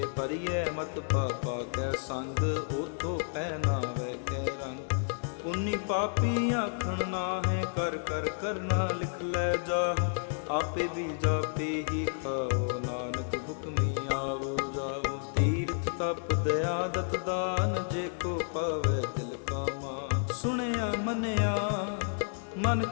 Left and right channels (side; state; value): right; silent; 57 dB below the other